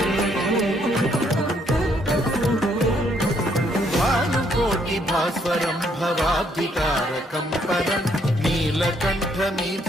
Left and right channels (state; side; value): normal; both; correlation 0.70